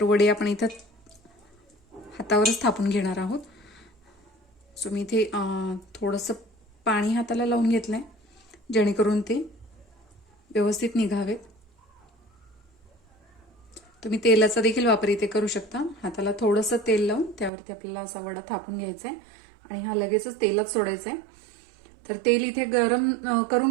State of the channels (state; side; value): drops out; left; at 17.5 s